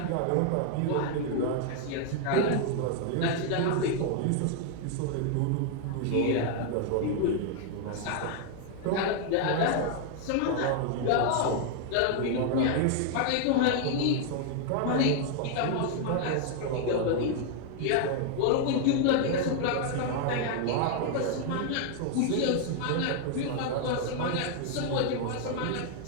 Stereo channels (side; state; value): both; different; correlation 0.00